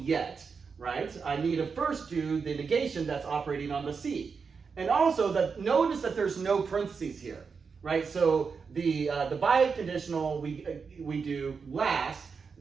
yet, right? I need to first do the negation that's operating on the C. And also, notice that there's no parentheses here, right? So the biconditional we do last.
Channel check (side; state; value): left; quieter; 5.4 dB